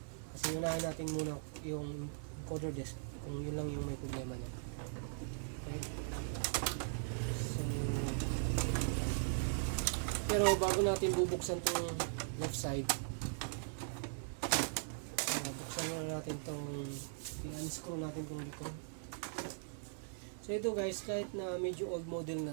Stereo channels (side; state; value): left; silent; 51 dB below the other